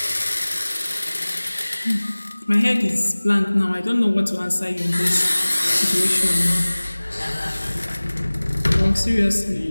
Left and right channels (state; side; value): inverted; both; correlation -1.00